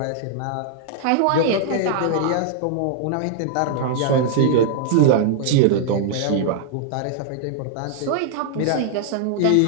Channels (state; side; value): different; both; correlation 0.00